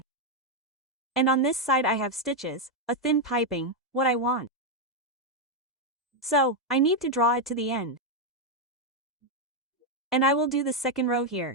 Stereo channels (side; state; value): both; normal; correlation 0.02